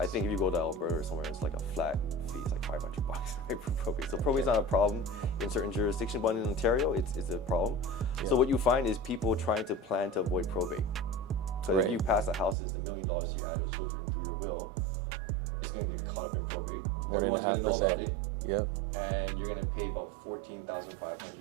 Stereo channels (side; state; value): left; drops out; at 12.6 s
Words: think if you go to Alberta or somewhere, it's like a flat fee. It's like $500 right, for probate. So probate's not a problem in certain jurisdictions, but in Ontario, it's a problem. Yeah. So what you find is people trying to plan to avoid probate. So if you pass a house that's $1 million to your adult children through your will, it's going to get caught up in probate. Everyone's going to know about it. Yeah. And you're going to pay about $14,500